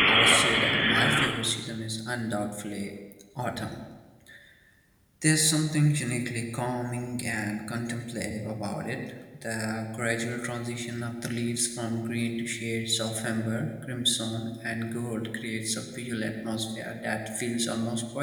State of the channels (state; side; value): identical; both; correlation 1.00